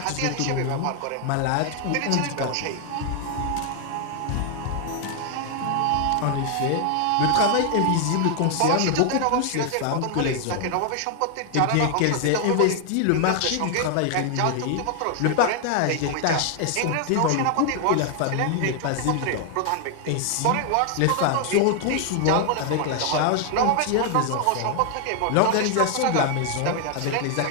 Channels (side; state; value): both; different; correlation 0.00